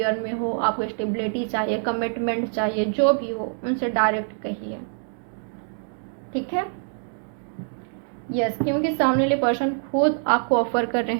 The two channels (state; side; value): silent; left; 61 dB below the other